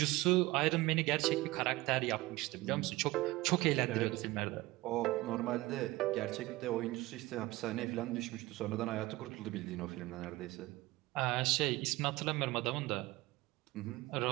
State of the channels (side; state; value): left; quieter; 19.7 dB